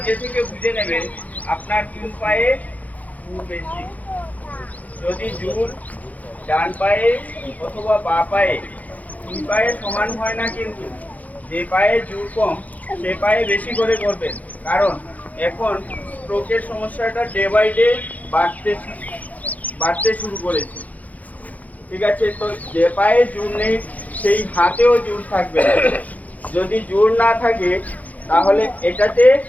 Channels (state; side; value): late; right; 0.076 ms